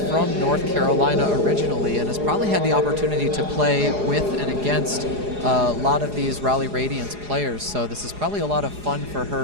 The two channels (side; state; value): left; late; 4.8 ms